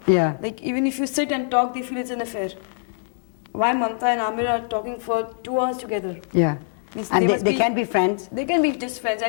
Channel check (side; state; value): right; silent; digital silence